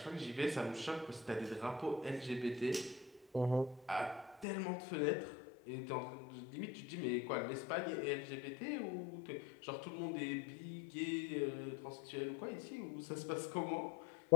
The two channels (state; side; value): drops out; right; at 4.5 s